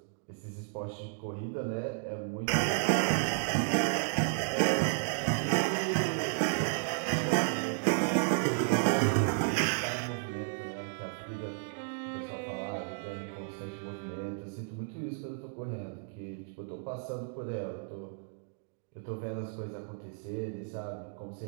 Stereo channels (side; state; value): left; silent; 56 dB below the other